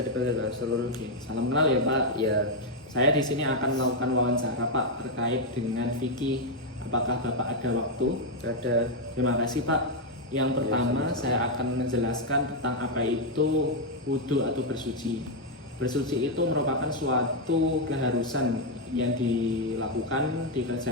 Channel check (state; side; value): normal; both; correlation 0.01